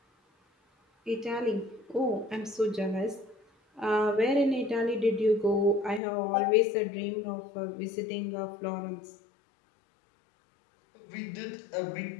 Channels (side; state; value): right; drops out; at 6.0 s